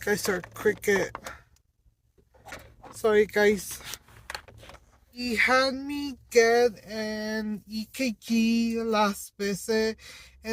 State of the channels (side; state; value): both; identical; correlation 1.00